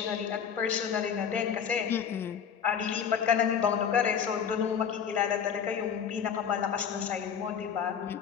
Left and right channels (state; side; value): quieter; right; 7.7 dB